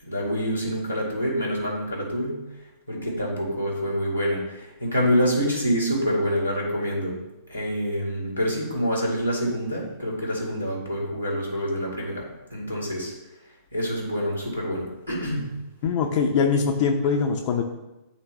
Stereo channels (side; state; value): both; inverted; correlation -0.61